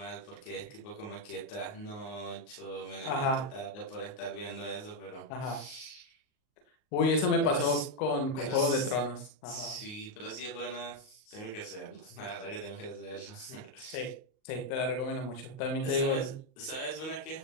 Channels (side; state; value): right; late; 38 ms